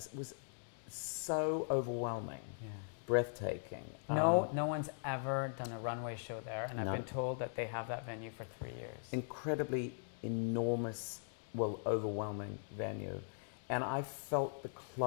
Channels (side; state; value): right; silent; digital silence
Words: was so overwhelming, breathtaking. No one's ever done a runway show there, and I've been told that they have that venue for 3 years. Incredibly enormous, overwhelming venue, and I felt the